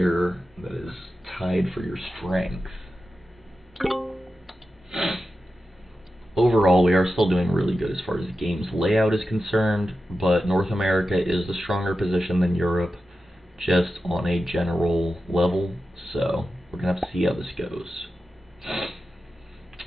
that is tied for your strength. Overall, we are still doing really good as far as the game's layout is concerned, but North America is the stronger position than Europe, just on a general level, so we're going to have to see how this goes.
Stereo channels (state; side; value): normal; both; correlation 0.92